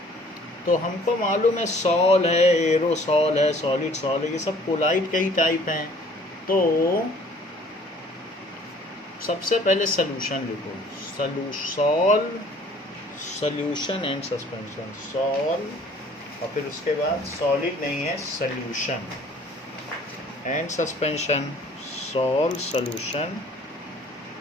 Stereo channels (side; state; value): both; normal; correlation 0.54